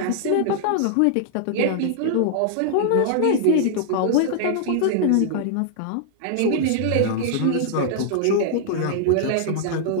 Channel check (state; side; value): different; both; correlation -0.01